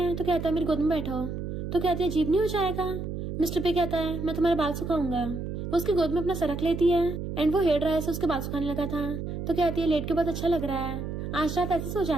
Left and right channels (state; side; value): noise; right; hum, 5 dB below the sound